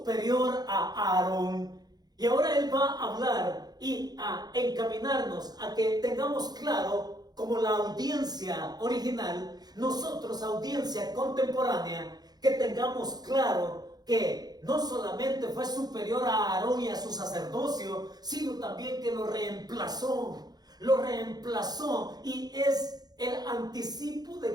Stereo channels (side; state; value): left; late; 0.19 ms